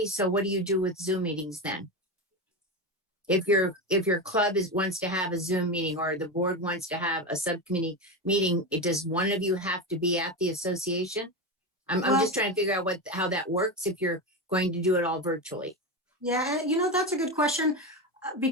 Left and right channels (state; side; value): normal; both; correlation 0.18